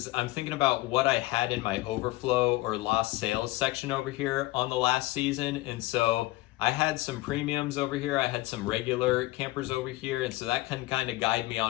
I'm thinking about what I had in my overflow or lost sales section over here on the last season. And so I had some premiums over here. I had some regular campers over here. And so that can kind of guide me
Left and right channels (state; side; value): quieter; right; 19.3 dB